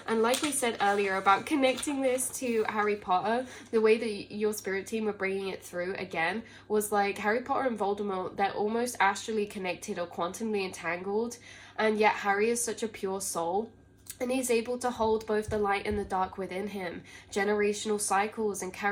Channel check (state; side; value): identical; both; correlation 1.00